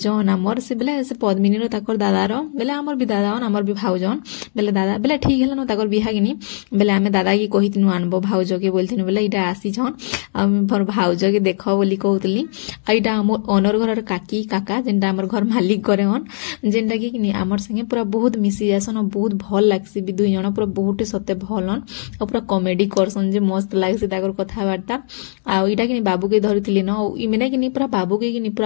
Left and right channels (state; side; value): silent; right; digital silence